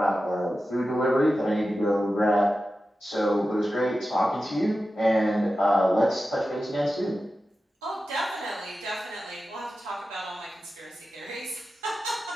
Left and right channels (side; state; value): both; normal; correlation 0.93